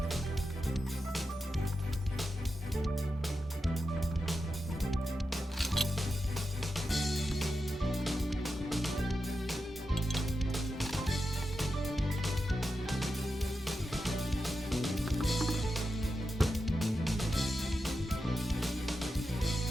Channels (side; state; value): both; normal; correlation 0.89